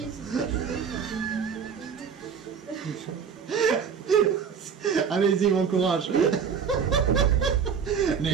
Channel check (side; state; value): left; quieter; 6.8 dB